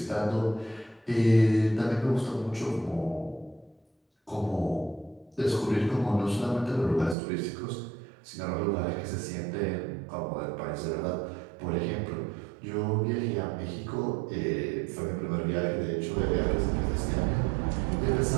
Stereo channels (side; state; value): left; drops out; at 7.2 s